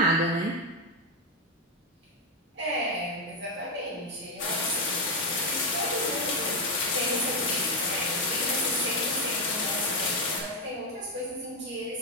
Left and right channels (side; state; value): both; normal; correlation 0.06